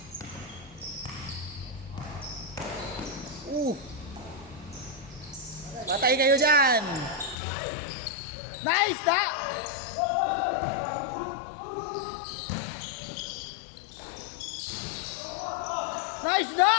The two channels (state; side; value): drops out; right; at 7.4 s